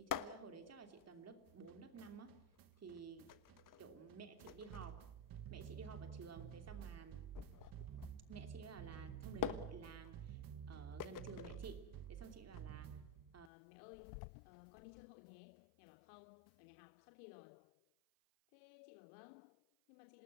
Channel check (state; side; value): drops out; right; at 13.5 s